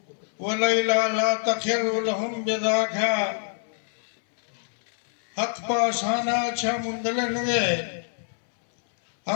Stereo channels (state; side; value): silent; right; 61 dB below the other